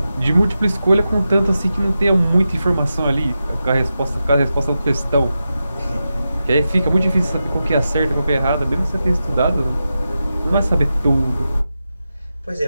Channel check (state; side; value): inverted; both; correlation -0.91